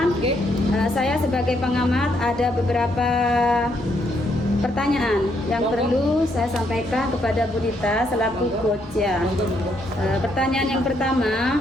saya sebagai pengamat ada beberapa pertanyaan yang perlu saya sampaikan kepada Bu Dita selaku coach ya. Pertanyaan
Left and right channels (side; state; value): both; normal; correlation 0.74